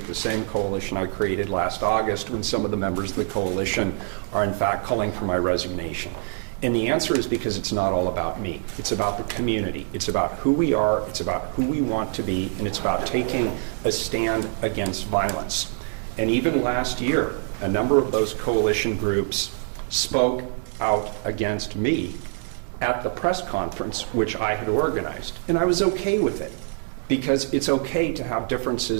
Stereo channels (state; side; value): silent; left; 62 dB below the other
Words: the same coalition I created last August when some of the members of the coalition are in fact calling for my resignation? And the answer is because it's not all about me. It's about the community. It's about who we are. It's about who we want to be. And it's about taking a stand against violence. And even last year, a number of those coalition groups spoke out against me at the press conference, which I had organized. And I was okay with it, because it's okay to have